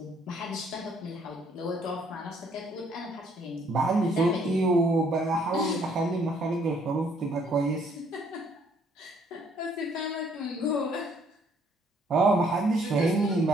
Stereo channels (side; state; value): both; normal; correlation 0.65